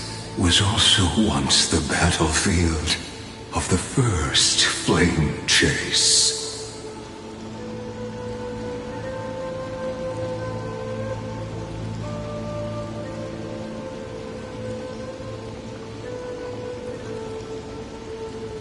was also once the battlefield of the first flame chase.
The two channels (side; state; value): both; identical; correlation 1.00